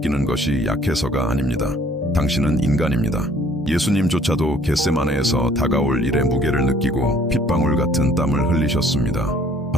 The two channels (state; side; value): normal; both; correlation 0.58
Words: 것이 약해서가 아닙니다. 당신은 인간입니다. 예수님조차도 겟세마네에서 다가올 일의 무게를 느끼고 핏방울 같은 땀을 흘리셨습니다.